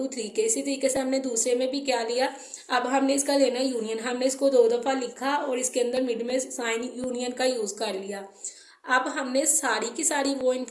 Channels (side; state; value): both; identical; correlation 1.00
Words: 3 के, इसी तरीके से हमने दूसरे में भी क्या लिया, अब हमने इसका लेना यूनियन, हमने इसको 2 दफ़ा लिखा और इसके अंदर मिड में साइन यूनियन का यूज़ कर लिया। अब हमने सारी की सारी वो